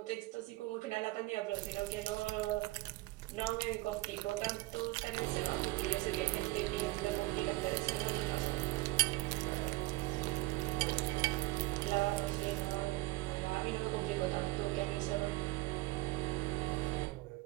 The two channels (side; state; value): left; quieter; 20.4 dB